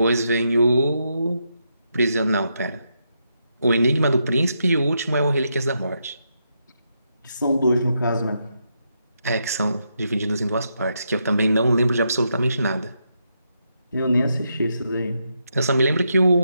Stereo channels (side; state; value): both; inverted; correlation -0.82